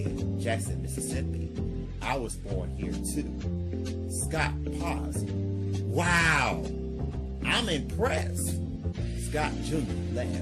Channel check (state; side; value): identical; both; correlation 1.00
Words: Jackson, Mississippi. I was born here too. Scott paused. Wow! I'm impressed. Scott Jr.